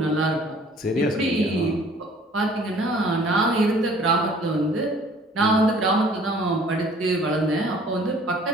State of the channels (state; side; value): normal; both; correlation 0.54